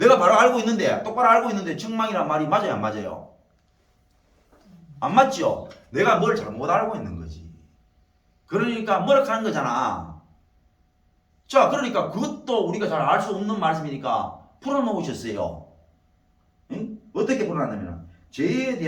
바로 알고 있는데, 똑바로 알고 있는데 책망이라는 말이 맞아요, 안 맞아요? 안 맞죠? 내가 뭘 잘못 알고 있는 거지. 그러니까 뭐락하는 거잖아. 자, 그러니까 그것도 우리가 잘 알 수 없는 말씀이니까 풀어놓으셨어요. 응? 어떻게 풀어놨냐면 죄에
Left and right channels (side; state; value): both; identical; correlation 1.00